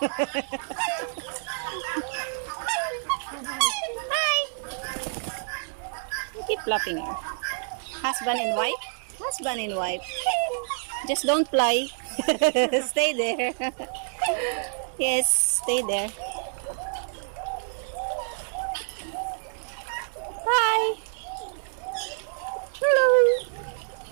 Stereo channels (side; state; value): left; silent; digital silence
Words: Hi. Keep flapping her. Husband and wife? Husband and wife. Just don't fly. Stay there. Yes, stay there. Hi. Hello.